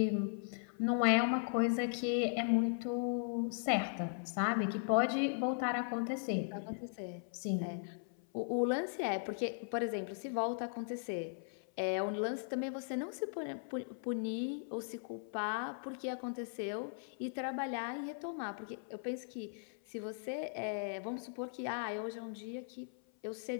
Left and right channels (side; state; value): right; silent; 52 dB below the other